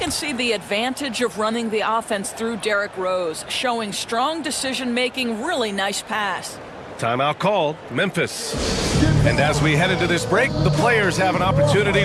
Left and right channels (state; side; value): identical; both; correlation 1.00